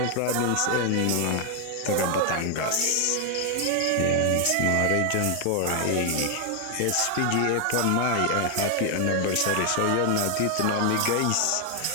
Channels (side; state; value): both; different; correlation 0.00